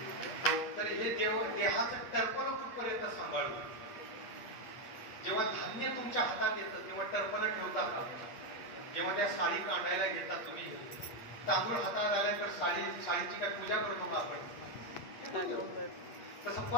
तर हे देहाचं टर्पण कुठपर्यंत सांभाळू. जेव्हा धान्य तुमच्या हातात येतं तेव्हा टर्पण ठेवता का? जेव्हा त्या साडी काढायला घेता तुम्ही, तांदूळ हातात आल्यानंतर साडीची काय पूजा करतो का आपण? तसं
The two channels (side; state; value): right; late; 8.5 ms